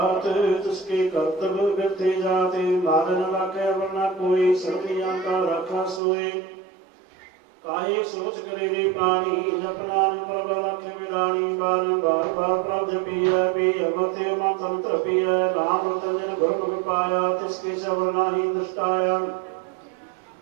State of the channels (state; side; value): drops out; left; at 6.0 s